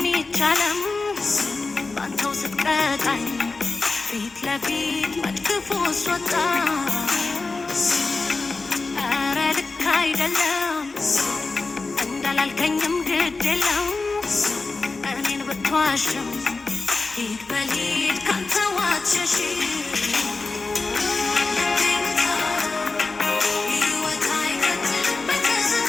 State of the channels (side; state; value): right; quieter; 3.8 dB